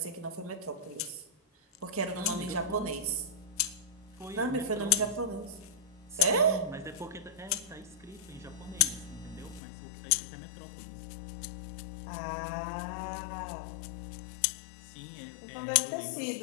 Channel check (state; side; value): drops out; right; at 9.6 s